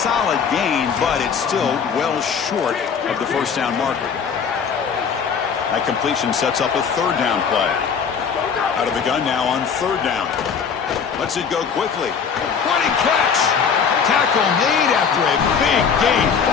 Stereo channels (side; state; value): right; quieter; 6.5 dB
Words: gain, but it's still well short of the first down marker. That completion sets up a 3rd down play. Out of the gun now on 3rd down. Lets it go quickly. Running catch. Tackle made after a big gain.